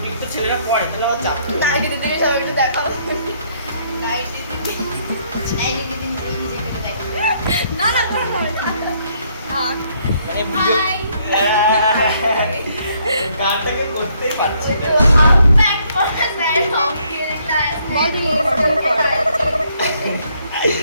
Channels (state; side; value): inverted; both; correlation -0.69